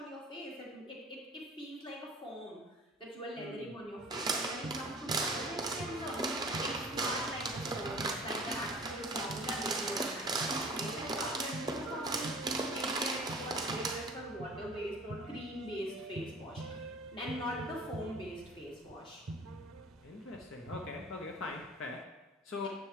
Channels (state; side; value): normal; both; correlation 0.45